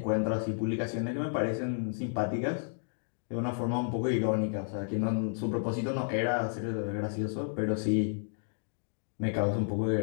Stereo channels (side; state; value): right; silent; digital silence